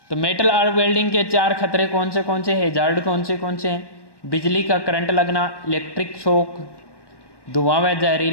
तो मेटल आर्क वेल्डिंग के 4 खतरे कौन से हैजार्ड कौन से हैं। बिजली का करंट लगना, इलेक्ट्रिक शॉक, धुआं व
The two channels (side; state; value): right; late; 1.1 ms